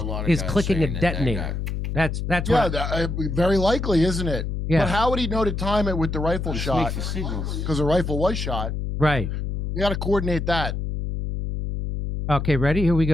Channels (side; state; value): left; noise; hum, 3 dB below the sound